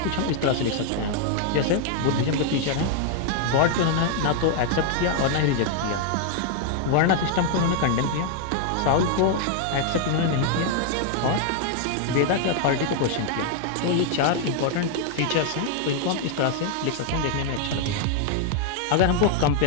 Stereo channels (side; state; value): both; different; correlation 0.00